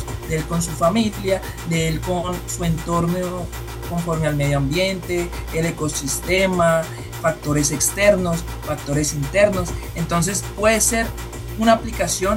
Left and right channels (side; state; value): both; identical; correlation 1.00